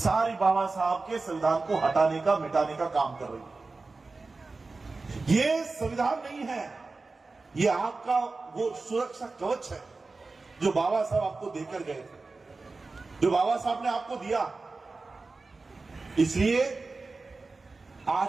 बाबा साहब के संविधान को हटाने का, मिटाने का काम कर रही है। ये संविधान नहीं है, ये आपका वो सुरक्षा कवच है जो बाबा साहब आपको देकर गए थे, जो बाबा साहब ने आपको दिया। इसलिए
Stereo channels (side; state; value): left; quieter; 3.7 dB